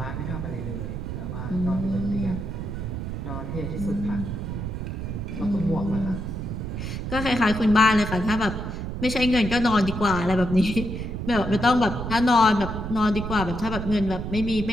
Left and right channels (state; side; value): noise; right; rumble, 5 dB below the sound